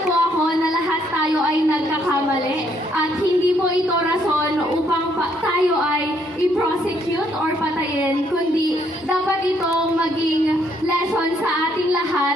po ako na lahat tayo ay nagkakamali at hindi po ito rason upang tayo ay i-prosecute or patayin, kundi dapat itong maging lesson sa ating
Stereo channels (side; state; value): both; normal; correlation 0.70